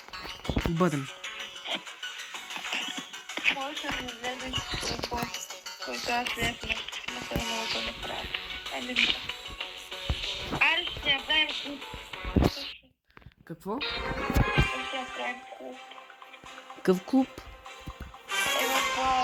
бъдем. Може да не влезеш в който аз влезна. Но това много да направя. Айде ми. Айде ще направим клуб. Какво? Ще направим клуб. Какъв клуб? В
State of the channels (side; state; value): both; identical; correlation 1.00